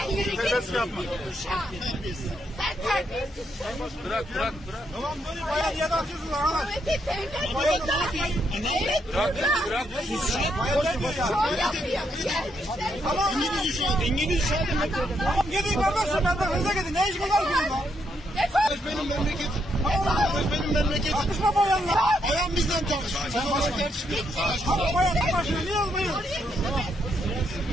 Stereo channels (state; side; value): normal; both; correlation 0.77